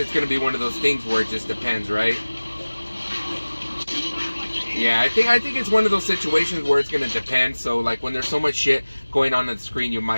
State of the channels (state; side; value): inverted; both; correlation -1.00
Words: gonna be one of those things where it just depends, right? Yeah, I think it's one of those situations where it's gonna depend. So like when there's so much shit going on the screen, you might